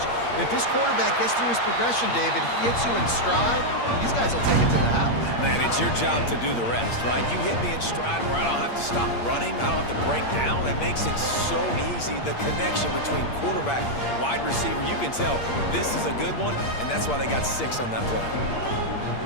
If this quarterback gets through his progression, David, he hits you in stride, these guys will take it to the house. Man, it's your job to do the rest, right? You hit me in stride where I don't have to stop running. I don't have to break down. It makes it so easy. The connection between quarterback, wide receiver, you can tell this is a good one, and that's why they got 6 on that play.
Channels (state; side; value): late; right; 8.6 ms